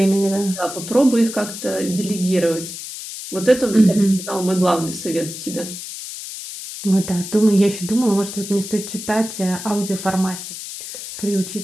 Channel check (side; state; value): left; noise; hiss, 10 dB below the sound